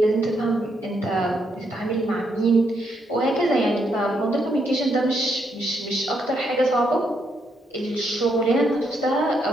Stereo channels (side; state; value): both; normal; correlation 0.77